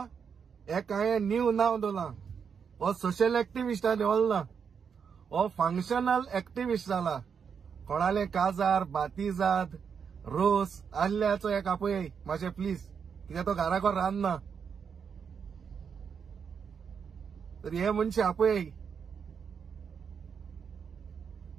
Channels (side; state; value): left; quieter; 6.7 dB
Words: एक हांवें न्यू नाव दवरलां हो सोशल एक्टिविस्टांनी ओल्ला हो फंक्शनल एक्टिविस्ट जाला कोणाले काजार बातिजाद रोस आल्ल्याचो एक आपय मातशें प्लीज कित्याक तो घराको रांदना तर हे मनशे आपय